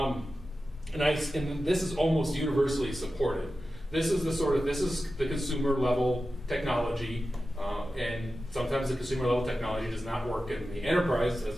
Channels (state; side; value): normal; both; correlation 0.93